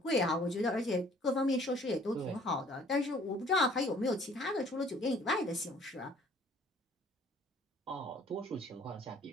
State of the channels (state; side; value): normal; both; correlation 0.56